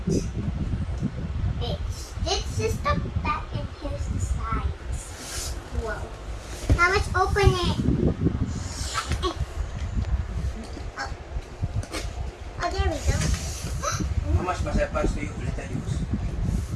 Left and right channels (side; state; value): both; identical; correlation 1.00